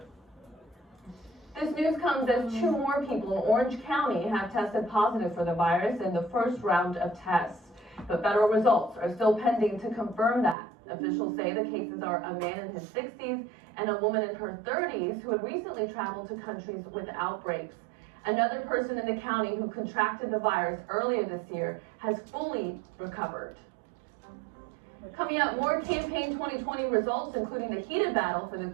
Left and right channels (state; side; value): drops out; left; at 10.6 s